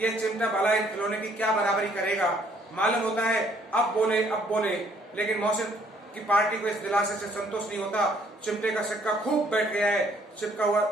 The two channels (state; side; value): normal; both; correlation 0.64